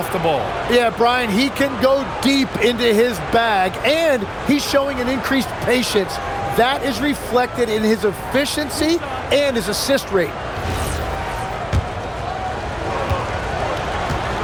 the ball? Yeah, Brian, he can go deep into his bag, and he's showing an increased patience. That is reflected in his efficiency and his assist rate.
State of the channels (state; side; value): identical; both; correlation 1.00